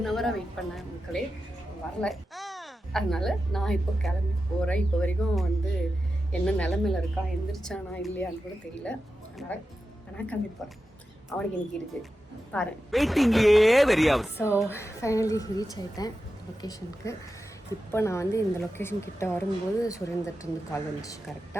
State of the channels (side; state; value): both; normal; correlation 0.91